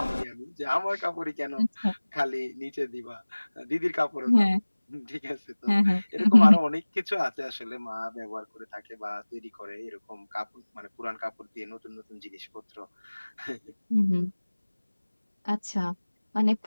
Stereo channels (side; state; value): both; inverted; correlation -1.00